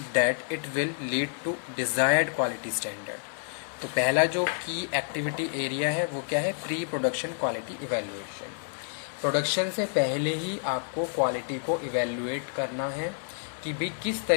that it will lead to desired quality standard. तो पहला जो की activity area है वो क्या है, pre production quality evaluation. Production से पहले ही आपको क्वालिटी को इवैल्यूएट करना है कि भी किस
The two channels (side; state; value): right; silent; 59 dB below the other